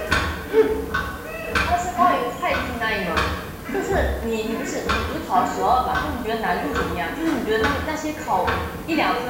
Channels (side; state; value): both; identical; correlation 1.00